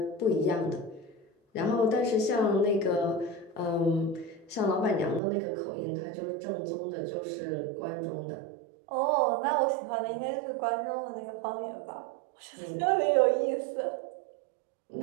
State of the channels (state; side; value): drops out; left; at 5.2 s